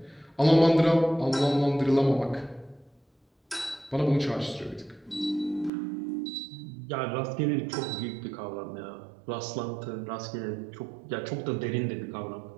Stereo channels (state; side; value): drops out; left; at 5.7 s